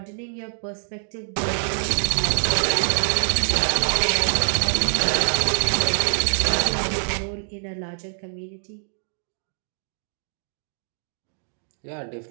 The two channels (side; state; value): left; silent; digital silence